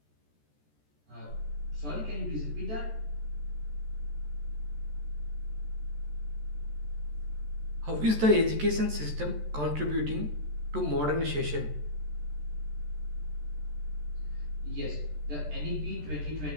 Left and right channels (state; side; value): late; left; 14 ms